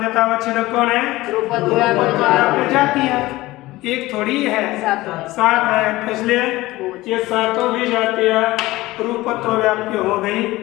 कौन है? रूपत्व व्याप्य जाति है, एक थोड़ी है, 7 है। इसलिए ये 7 भी जातियां रूपत्व व्याप्य हो गई,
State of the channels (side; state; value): right; quieter; 18.6 dB